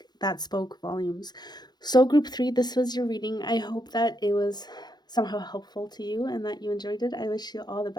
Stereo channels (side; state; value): right; late; 0.20 ms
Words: that spoke volumes. So, group 3, this was your reading. I hope that it was somehow helpful to you and that you enjoyed it. I wish you all the